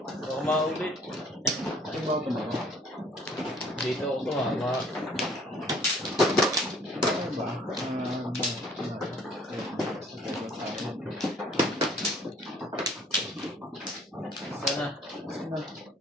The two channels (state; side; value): normal; both; correlation 0.57